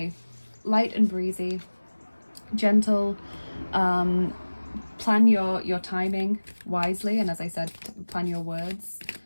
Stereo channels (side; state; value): both; inverted; correlation -1.00